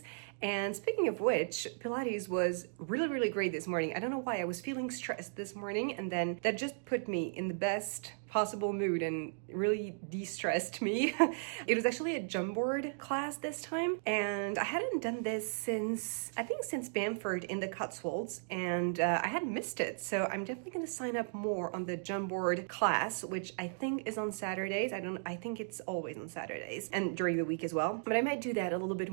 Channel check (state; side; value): silent; left; digital silence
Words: And speaking of which, Pilates was really great this morning. I don't know why, I was feeling stressed this morning, and then that just put me in the best possible mood and really de-stressed me. It was actually a jump board class this time, and I hadn't done this since Bamford in the Cotswolds, and I had missed it. So I'm definitely gonna sign up more on the jump board class, which I think is on Saturdays. I think it's always on Saturdays and during the week as well. But I might do that a little bit